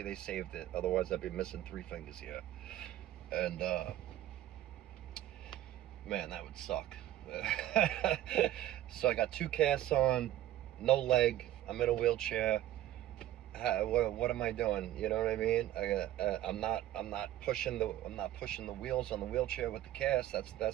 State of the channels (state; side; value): quieter; left; 13.5 dB